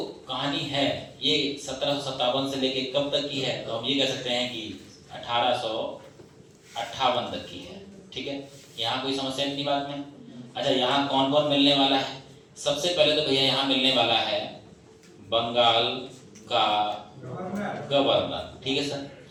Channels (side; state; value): both; identical; correlation 1.00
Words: कहानी है ये 1757 से लेके कब तक की है, तो हम ये कह सकते हैं कि 1858 तक की है, ठीक है। यहाँ कोई समस्या नहीं बात में। अच्छा, यहाँ कौन कौन मिलने वाला है, सबसे पहले तो भैया यहाँ मिलने वाला है बंगाल का गवर्नर, ठीक है सर।